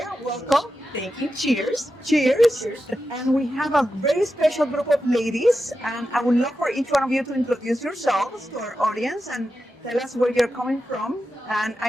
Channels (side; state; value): both; normal; correlation 0.90